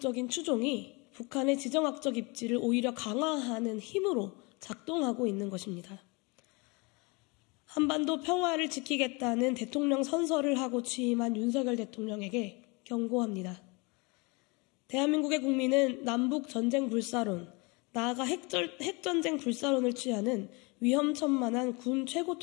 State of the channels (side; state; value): right; quieter; 28.3 dB